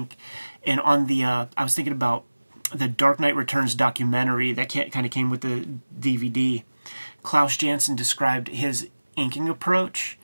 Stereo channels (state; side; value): inverted; both; correlation -1.00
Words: And on the I was thinking about the Dark Knight Returns documentary that kind of came with the DVD. Klaus Janson described his inking approach